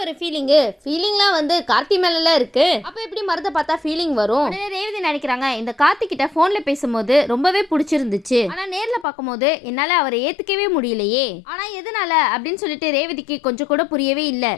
ஒரு ஃபீலிங்லாம் வந்து கார்த்தி மேல இருக்கு, அப்ப எப்படி மருத பார்த்தா ஃபீலிங் வரும்? உடனே ரேவதி நினைக்கிறாங்க, இந்த கார்த்தி கிட்ட போன்ல பேசும்போது ரொம்பவே பிடிச்சிருந்துச்சு, ஆனா நேர்ல பார்க்கும்போது என்னால அவரை ஏத்துக்கவே முடியலையே, ஆனா எதனால அப்படின்னு சொல்லிட்டு ரேவதிக்கு கொஞ்சம் கூட புரியவே இல்ல.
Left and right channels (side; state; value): right; drops out; at 9.1 s